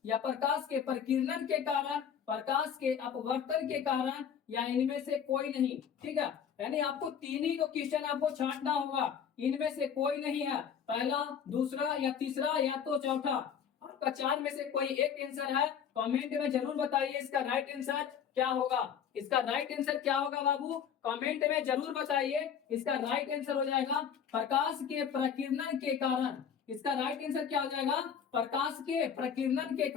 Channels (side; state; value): right; quieter; 7.9 dB